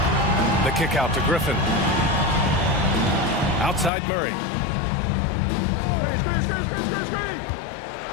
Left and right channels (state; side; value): drops out; right; at 3.9 s